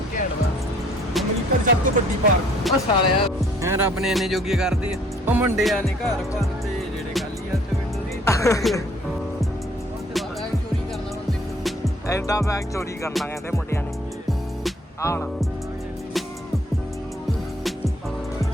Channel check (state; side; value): normal; both; correlation 0.60